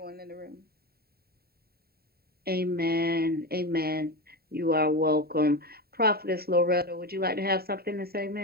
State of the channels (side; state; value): left; late; 0.45 ms